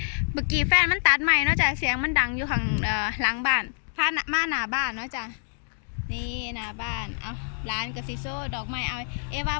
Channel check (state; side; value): silent; right; digital silence